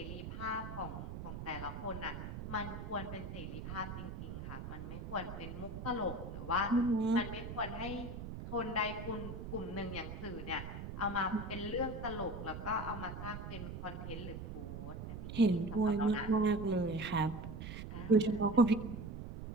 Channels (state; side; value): noise; right; rumble, 7 dB below the sound